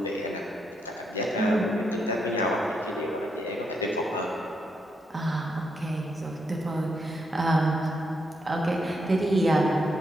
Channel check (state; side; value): normal; both; correlation 0.79